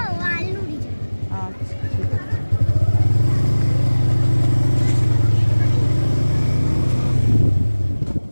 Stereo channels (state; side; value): inverted; both; correlation -1.00